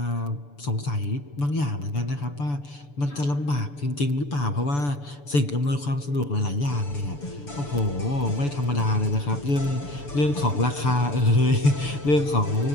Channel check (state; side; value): late; right; 6.9 ms